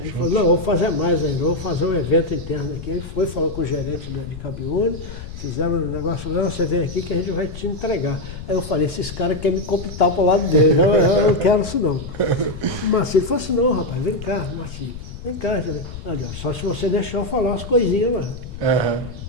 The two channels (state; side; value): noise; left; rumble, 11 dB below the sound